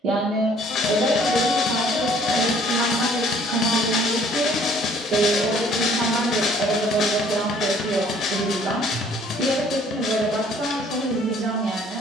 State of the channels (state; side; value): normal; both; correlation 0.58